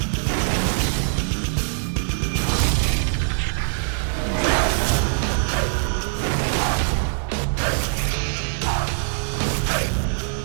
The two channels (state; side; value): silent; left; digital silence